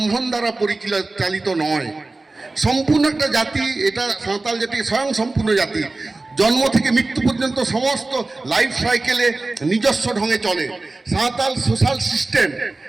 দ্বারা পরিচালিত নয়। সম্পূর্ণ একটা জাতি, এটা সাঁওতাল জাতি স্বয়ং সম্পূর্ণ জাতি। জন্ম থেকে মৃত্যু পর্যন্ত সমস্ত লাইফ সাইকেলে নিজস্ব ঢঙে চলে। সাঁওতাল সোশ্যাল সিস্টেম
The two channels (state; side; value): quieter; left; 3.3 dB